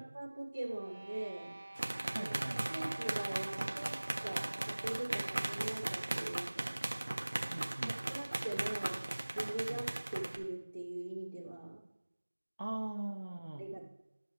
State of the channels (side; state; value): both; inverted; correlation -1.00